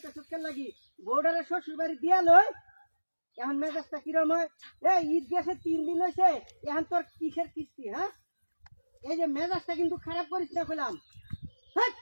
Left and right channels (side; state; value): both; inverted; correlation -1.00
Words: সুটকে লাগি বউডারে শ্বশুর বাড়ি দিয়া লই এখন মেজাজটা কিরম হয় ঈদ গেছে 3 দিন হয়েছে এখন তোর কিসের কিস্তি হ্যাঁ এই যে মেজাজটা কিন্তু খারাপ করিস না কইলাম